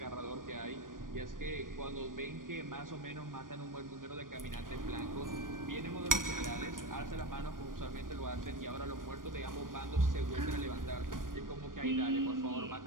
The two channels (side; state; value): left; late; 0.90 ms